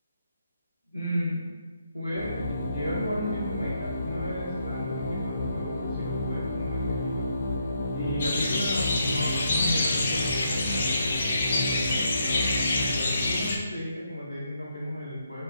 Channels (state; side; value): inverted; both; correlation -0.77